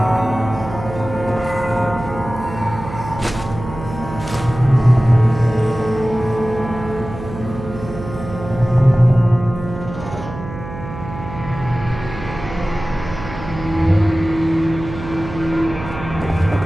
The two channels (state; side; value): noise; right; hum, 11 dB below the sound